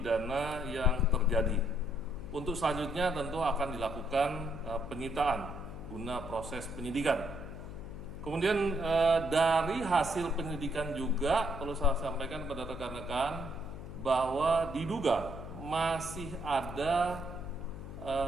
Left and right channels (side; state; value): left; noise; hum, 11 dB below the sound